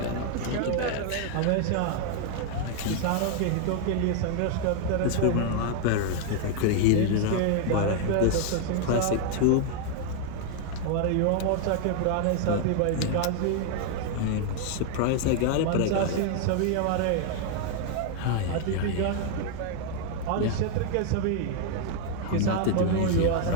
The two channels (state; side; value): different; both; correlation 0.00